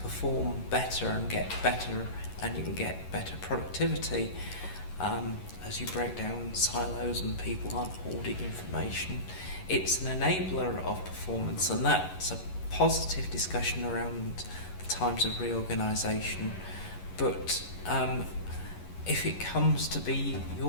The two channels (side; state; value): right; late; 11 ms